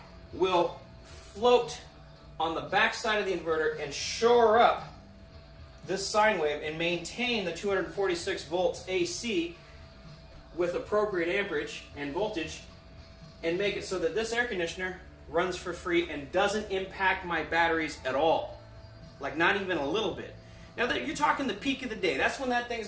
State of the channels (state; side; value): identical; both; correlation 1.00